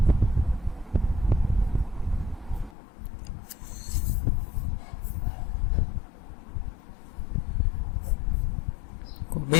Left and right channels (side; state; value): right; drops out; at 2.8 s